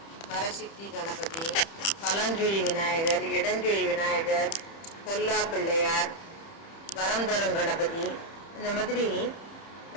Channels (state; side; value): late; right; 30 ms